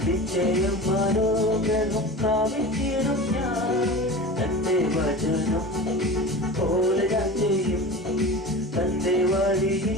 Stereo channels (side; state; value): both; normal; correlation 0.33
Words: നിശ്ചയം മനോഗ്രഹം പ്രാപിച്ചിടും ഞാൻ. തന്റെ വചനം പോലെ ഞാൻ ചെയ്യും, തന്റെ